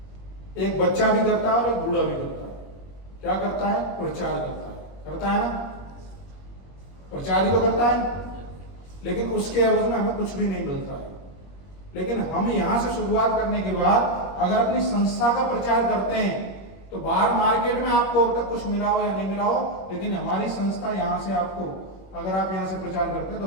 एक बच्चा भी करता है और एक बूढ़ा भी करता है। क्या करता है? प्रचार करता है ना? प्रचार ही तो करता है, लेकिन उसके एवज में हमें कुछ भी नहीं मिलता है। लेकिन हम यहां से शुरुआत करने के बाद अगर अपनी संस्था का प्रचार करते हैं तो बाहर मार्केट में आपको अब तक कुछ मिला हो या नहीं मिला हो, लेकिन हमारी संस्था यहां से आपको, अगर आप यहां से प्रचार करते हैं तो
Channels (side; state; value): right; late; 21 ms